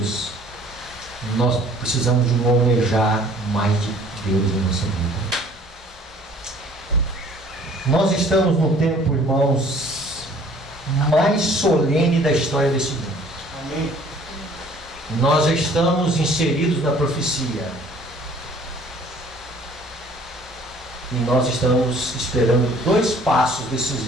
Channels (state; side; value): normal; both; correlation 0.54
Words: Nós precisamos de um almejar mais de Deus em nossa vida. Nós estamos no tempo, irmãos, mais solene da história desse mundo. Amém. nós já estamos inseridos na profecia. E nós estamos esperando 2 passos